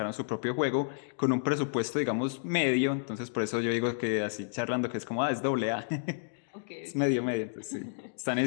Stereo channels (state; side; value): silent; right; digital silence